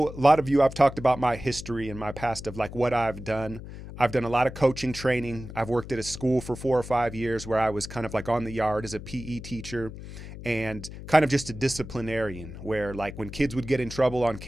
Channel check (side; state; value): left; noise; hum, 12 dB below the sound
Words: a lot of you, I've talked about my history and my past of like what I've done. I've done a lot of coaching training. I've worked at a school for 4 or 5 years where I was kind of like on the yard as a PE teacher and kind of just a disciplinarian, where like when kids would get in trouble on